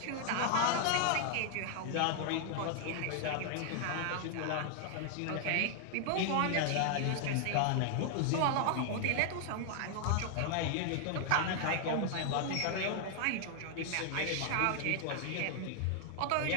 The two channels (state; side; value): different; both; correlation 0.00